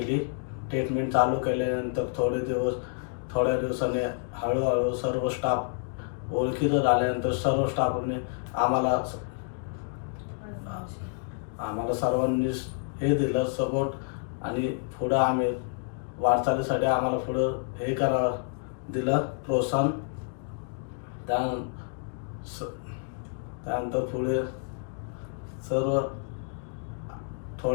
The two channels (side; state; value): right; silent; 59 dB below the other